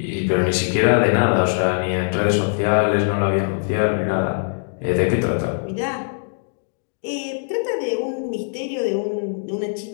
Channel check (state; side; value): silent; right; digital silence